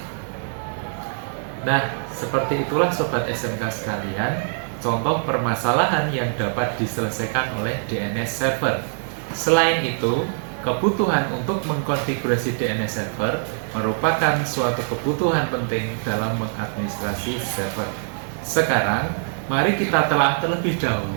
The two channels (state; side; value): silent; left; 63 dB below the other